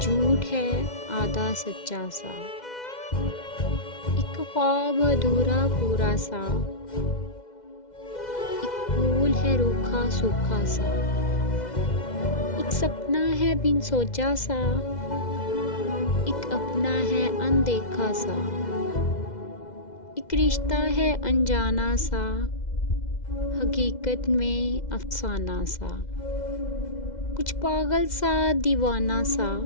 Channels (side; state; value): right; late; 2.0 ms